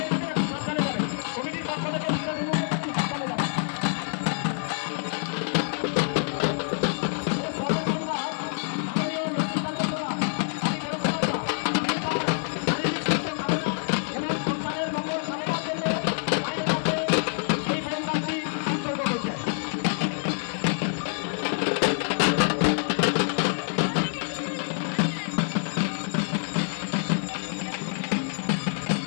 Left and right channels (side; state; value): right; silent; digital silence